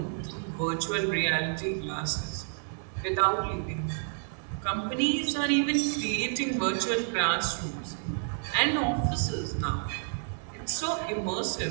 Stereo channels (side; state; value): left; silent; 58 dB below the other